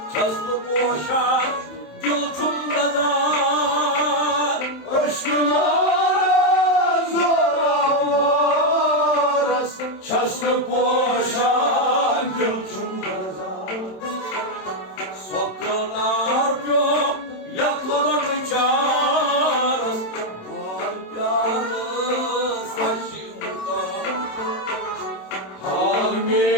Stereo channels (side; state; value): right; late; 27 ms